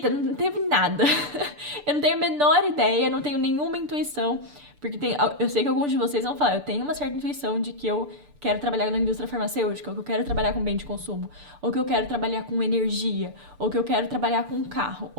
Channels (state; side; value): late; left; 6.8 ms